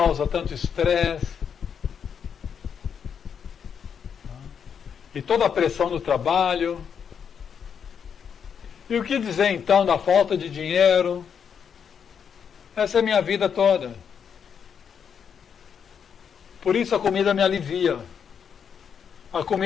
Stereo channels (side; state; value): right; quieter; 7.3 dB